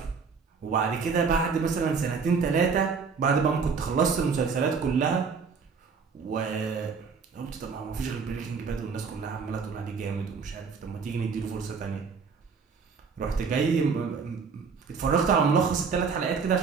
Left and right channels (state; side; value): quieter; left; 5.4 dB